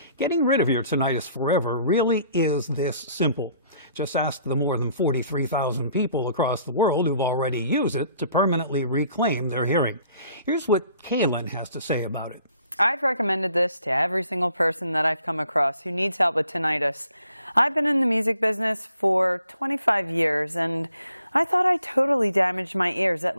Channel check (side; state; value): both; inverted; correlation -0.62